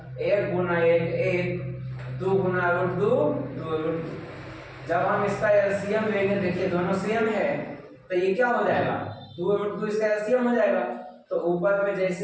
1 गुना 1 1, 2 गुना √2 2√2। जब हम इसका एलसीएम लेंगे, देखिए दोनों सेम है, तो ये क्या हो जाएगा 2√2 इसका एलसीएम हो जाएगा, तो ऊपर में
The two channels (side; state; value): both; identical; correlation 1.00